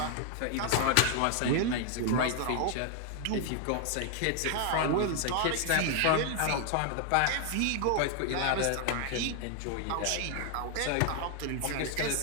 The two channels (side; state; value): both; different; correlation 0.00